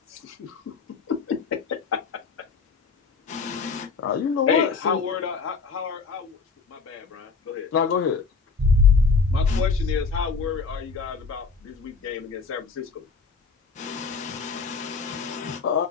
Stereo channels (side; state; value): right; quieter; 4.7 dB